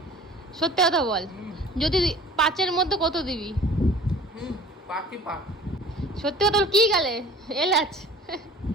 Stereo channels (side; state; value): both; normal; correlation 0.46